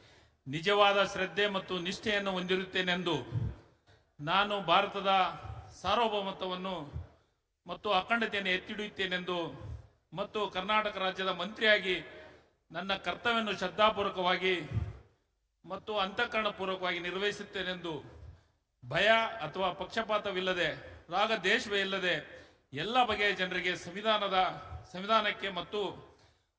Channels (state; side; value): identical; both; correlation 1.00